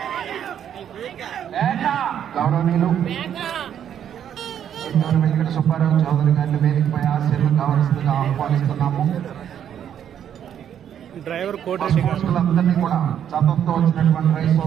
గౌరవనీయులు వెంకట సుబ్బారావు చౌదరి గారిని వేదికపై ఆశీర్వాదం కావాల్సిందిగా ఆహ్వానిస్తున్నాము. డ్రైవర్ కోటిరెడ్డి అందరినీ కూడా చదువుతో వచ్చినటువంటి రైతు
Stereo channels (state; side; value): quieter; left; 9.4 dB